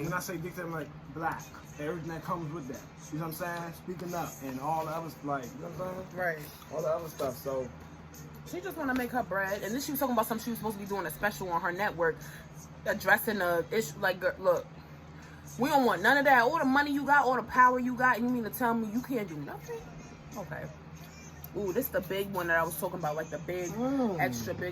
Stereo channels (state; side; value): identical; both; correlation 1.00